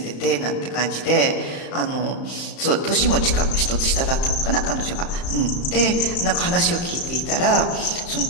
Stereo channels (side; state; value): right; late; 35 ms